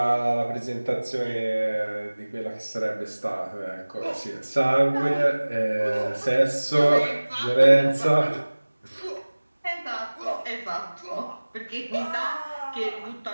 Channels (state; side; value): inverted; both; correlation -1.00